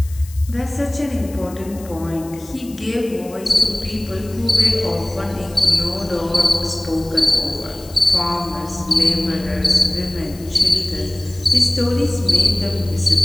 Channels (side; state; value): left; noise; hiss, 20 dB below the sound